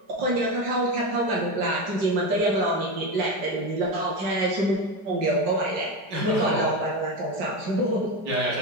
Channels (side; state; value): left; late; 4.9 ms